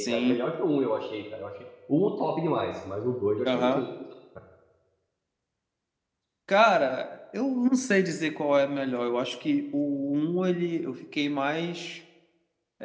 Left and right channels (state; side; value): identical; both; correlation 1.00